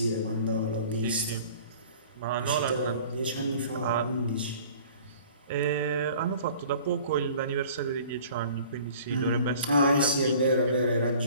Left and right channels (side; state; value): both; inverted; correlation -0.48